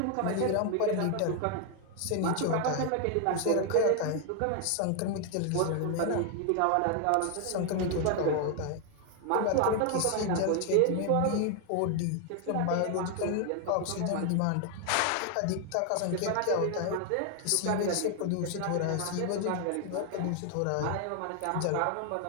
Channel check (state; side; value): different; both; correlation 0.00